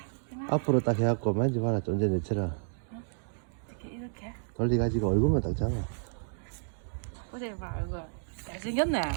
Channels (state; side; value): silent; left; digital silence